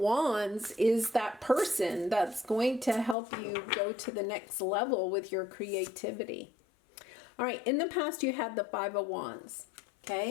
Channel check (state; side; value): drops out; right; at 3.2 s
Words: is that person that's going to help you go to the next level with your creativity. All right, in the past you had the 5 of Wands,